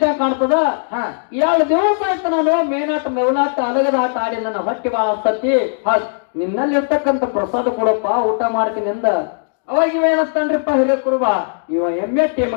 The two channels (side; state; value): right; silent; digital silence